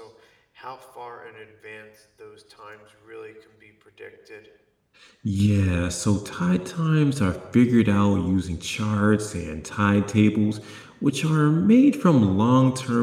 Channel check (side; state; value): both; identical; correlation 1.00